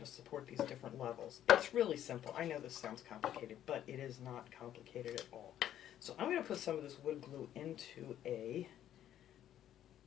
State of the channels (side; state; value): right; quieter; 11.3 dB